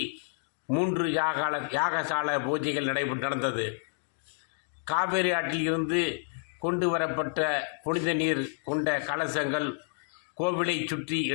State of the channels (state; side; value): silent; right; 58 dB below the other